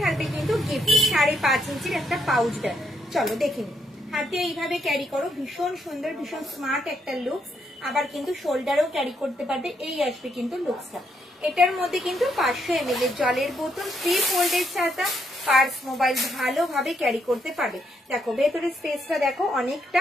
থাকবে কিন্তু গিফট 5.5 ইঞ্চির একটা পাউচ ব্যাগ। চলো দেখে নিই। হাতে এইভাবে ক্যারি করো, ভীষণ সুন্দর, ভীষণ স্মার্ট একটা লুকস। আবার কিন্তু শোল্ডারেও ক্যারি করতে পারবে, এই আসবে কিন্তু লুকসটা। এটার মধ্যে কিন্তু 500 ml এর জলের বোতল, 3 ফোল্ডের ছাতা, পার্স, মোবাইল ভালোভাবে ক্যারি করতে পারবে। দেখো ভেতরের স্পেসটা দেখো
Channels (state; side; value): normal; both; correlation 0.75